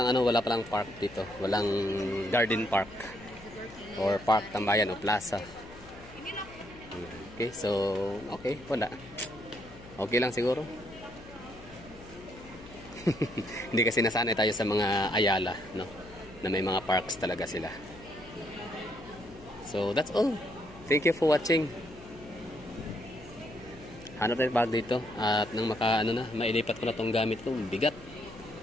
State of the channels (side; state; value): left; noise; hum, 19 dB below the sound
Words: park dito. Walang garden park. Or park tambayan o plaza. Okay, so, okay, wala. Okay lang siguro. Hindi kasi nasanay tayo sa mga Ayala, no? Na may mga parks talaga sila. So, that's all. Thank you for watching. Hanap tayo bag dito. At nang mailipat ko na tong gamit ko, bigat.